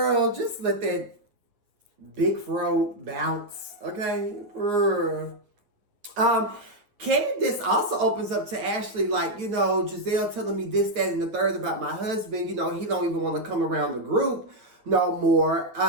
just let that big fro bounce, okay? Candace also opens up to Ashley like, Giselle telling me this, that, and the third about my husband. He don't even want to come around the group no more.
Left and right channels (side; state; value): left; late; 8.9 ms